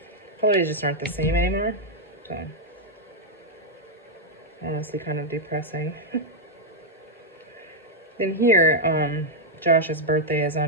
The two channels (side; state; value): both; normal; correlation -0.02